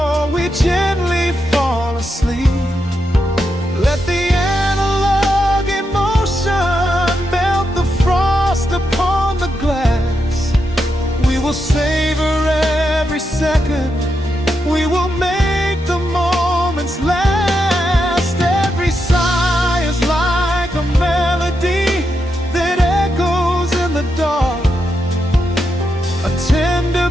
we gently fall asleep. Let the analog emotion melt the frost upon the glass. We will savor every second, we will make the moments last. Every sigh is like a melody that echoes in the dark, a tender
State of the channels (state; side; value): normal; both; correlation 0.84